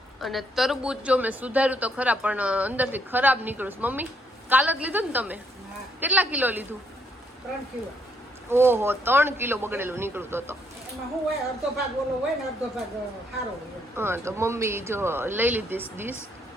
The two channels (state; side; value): normal; both; correlation 0.72